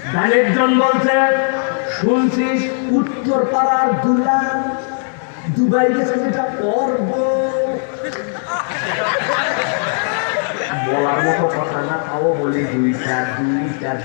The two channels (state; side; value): silent; right; 60 dB below the other